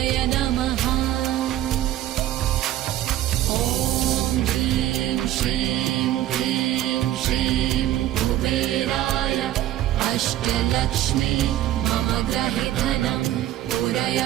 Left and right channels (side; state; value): left; quieter; 13.3 dB